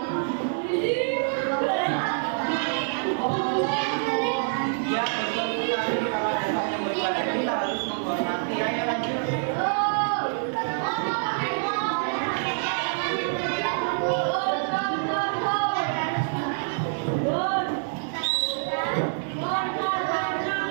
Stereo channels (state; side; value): silent; left; digital silence